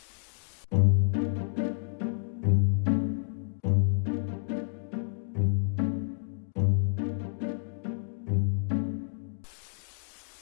si aad u samayso indha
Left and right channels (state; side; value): silent; right; 58 dB below the other